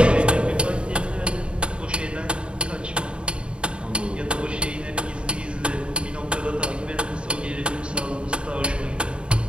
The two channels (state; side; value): late; left; 0.055 ms